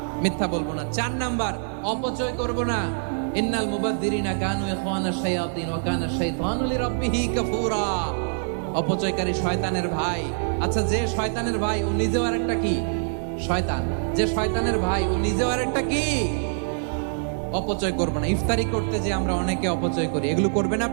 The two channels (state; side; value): silent; left; digital silence